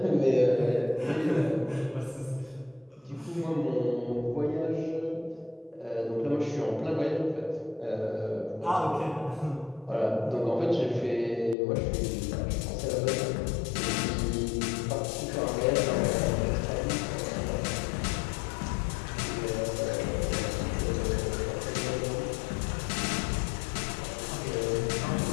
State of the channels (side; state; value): right; drops out; at 11.6 s